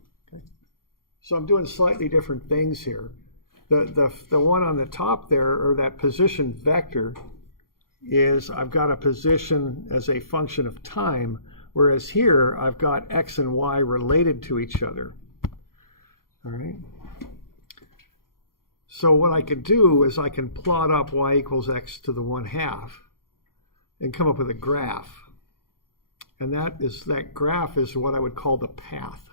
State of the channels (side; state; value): right; late; 0.92 ms